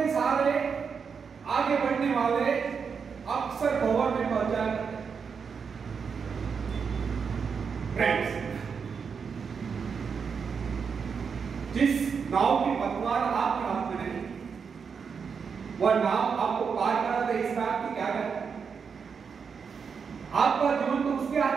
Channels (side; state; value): left; quieter; 6.1 dB